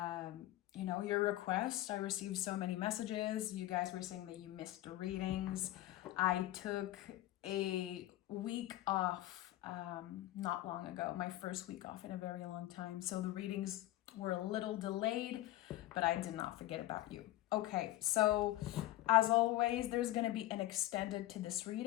request. I received so many messages. You guys were saying that you missed the readings. I took a week off not long ago, my first week off in a very long time. So the readings were a little delayed, but I did not forget about you. Okay, so as always, there's going to be an extended to this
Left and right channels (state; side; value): quieter; right; 15.7 dB